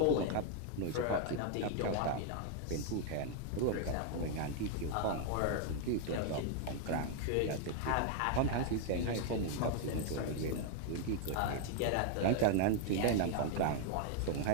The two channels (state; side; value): different; both; correlation 0.00